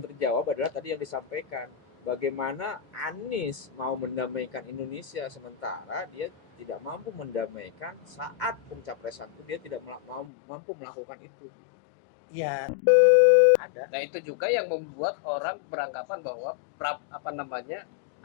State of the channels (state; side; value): drops out; right; at 10.3 s